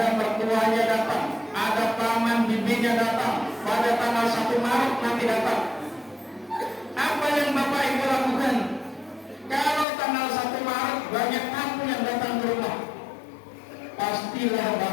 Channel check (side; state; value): right; drops out; at 9.9 s